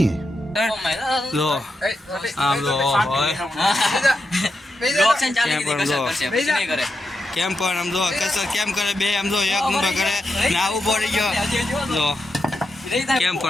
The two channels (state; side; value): normal; both; correlation 0.86